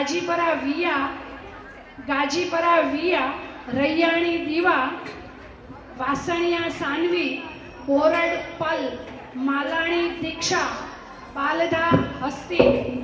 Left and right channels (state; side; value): identical; both; correlation 1.00